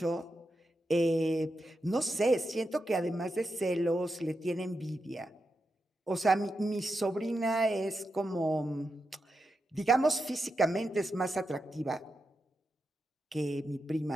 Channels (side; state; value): both; normal; correlation 0.88